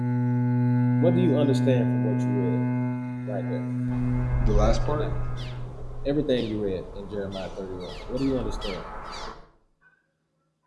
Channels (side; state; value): both; identical; correlation 1.00